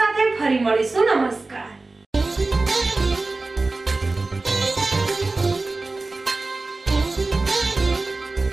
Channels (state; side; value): quieter; left; 3.4 dB